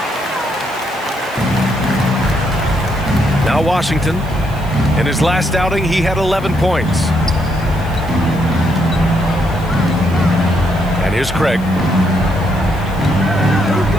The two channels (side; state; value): left; noise; hiss, 23 dB below the sound